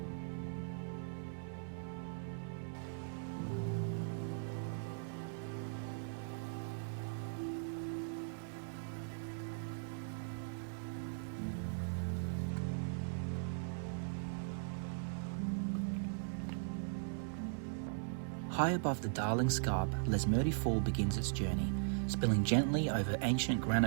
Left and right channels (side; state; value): left; silent; 52 dB below the other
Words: High above the Darling Scarp, Lesmurdie Fall begins its journey, spilling gently over ancient